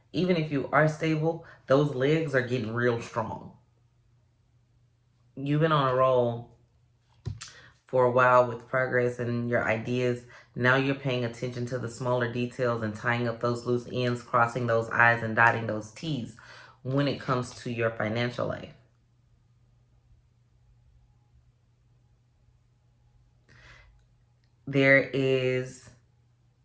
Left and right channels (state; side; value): identical; both; correlation 1.00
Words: Even if you are stable, those legs are getting real strong. You've been on a roll for a while with progress and your ideas. Now you're paying attention to the smaller details and tying up those loose ends, crossing those I's and dotting those T's when it comes to your financial life. There is